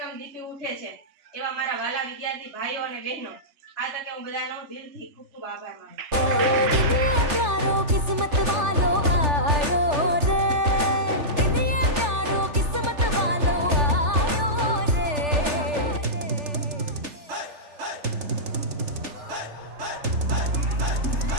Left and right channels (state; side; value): late; left; 3.4 ms